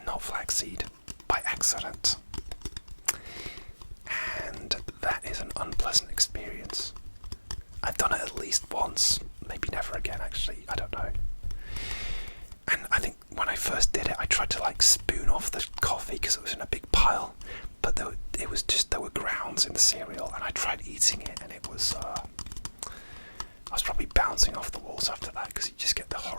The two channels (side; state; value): both; inverted; correlation -1.00